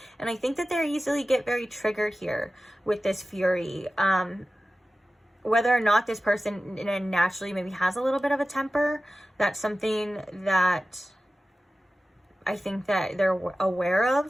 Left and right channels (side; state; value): both; normal; correlation 0.95